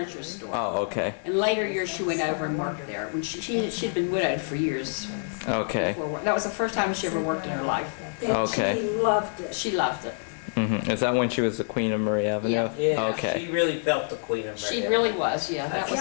store. Oh, okay, In later years, she went over and worked there. When she'd been widowed for years. okay, That was the first time she ever worked in her life. And Okay. She loved it. She loved it. Is that when she was the queen of Murray Avenue? Yeah, Okay. she really felt the Queen of She Mary. really was, yeah.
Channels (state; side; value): silent; right; digital silence